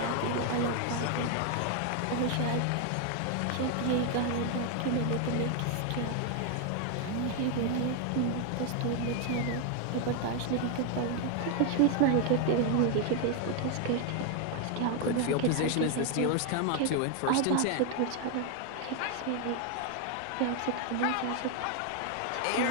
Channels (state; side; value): different; both; correlation 0.01